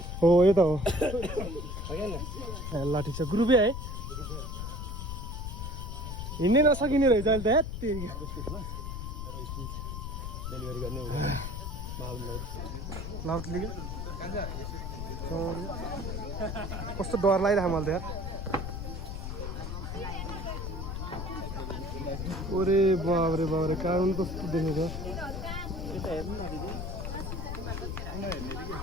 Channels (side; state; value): left; noise; rumble, 5 dB below the sound